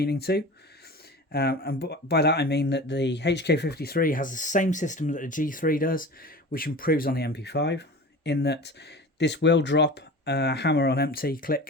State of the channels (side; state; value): both; normal; correlation 0.35